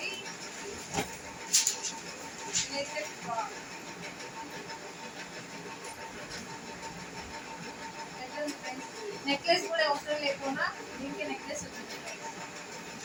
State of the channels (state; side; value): identical; both; correlation 1.00